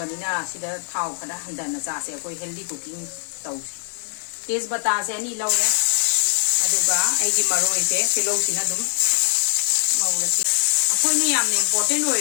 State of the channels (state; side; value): silent; right; digital silence